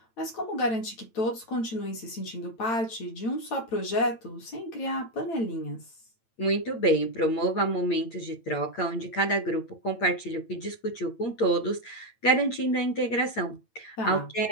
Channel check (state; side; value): late; right; 8.9 ms